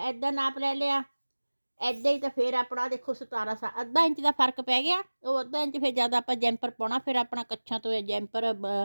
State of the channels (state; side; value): inverted; both; correlation -1.00